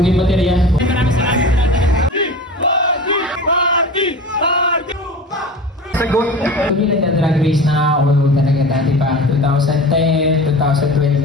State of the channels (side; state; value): both; normal; correlation 0.35